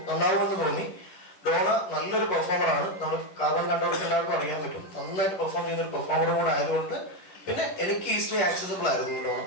നന്നാവുമെന്ന് തോന്നി. ഡോണ നല്ലൊരു പെർഫോമറാണ്. നമ്മൾ കാർബൺ കണ്ടവർക്ക് എല്ലാവർക്കും അറിയാൻ പറ്റും. നന്നായിട്ട് പെർഫോം ചെയ്യുന്ന ഒരു പെർഫോമറും കൂടെ ആയതുകൊണ്ട് പിന്നെ എനിക്ക് ഈസിലി ആക്സസിബിൾ ആയിരുന്നു ഡോണ.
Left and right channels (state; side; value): late; right; 10 ms